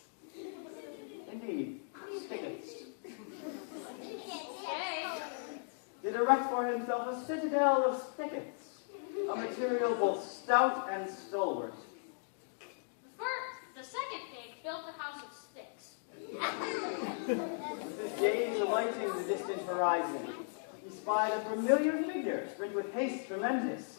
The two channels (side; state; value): right; silent; digital silence